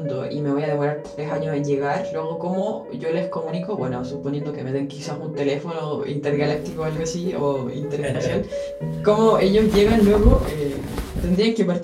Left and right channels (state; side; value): identical; both; correlation 1.00